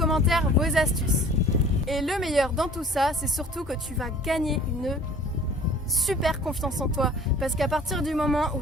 vos astuces. Et le meilleur dans tout ça, c'est surtout que tu vas gagner une super confiance en toi parce qu'à partir du moment où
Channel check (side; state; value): both; normal; correlation 0.49